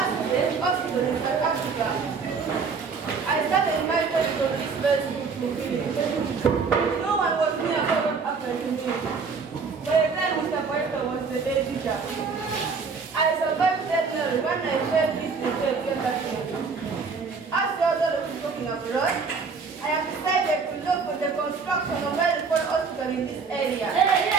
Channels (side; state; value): left; quieter; 5.1 dB